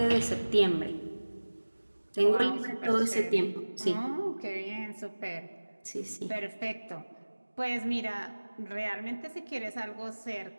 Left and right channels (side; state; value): both; inverted; correlation -1.00